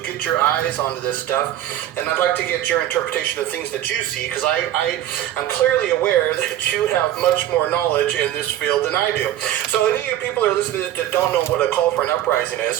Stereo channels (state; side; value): quieter; left; 12.4 dB